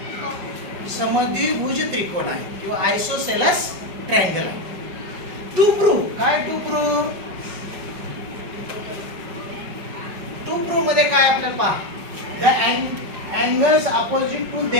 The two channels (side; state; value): left; late; 5.4 ms